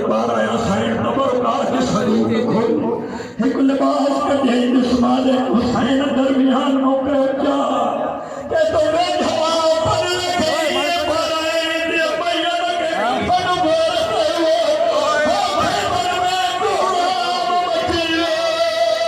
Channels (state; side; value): identical; both; correlation 1.00